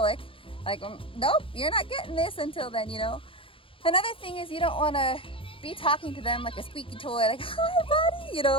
like, nope, you're not getting this until then, you know. Another thing is you don't want to be talking to them like a squeaky toy, like, hi, buddy, you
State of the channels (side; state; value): right; late; 0.26 ms